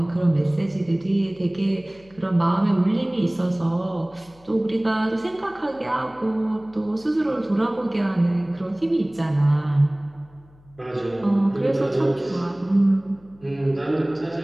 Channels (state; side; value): noise; left; hum, 27 dB below the sound